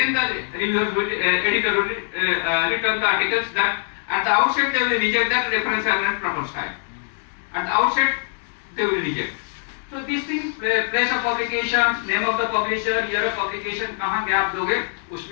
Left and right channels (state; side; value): silent; right; 59 dB below the other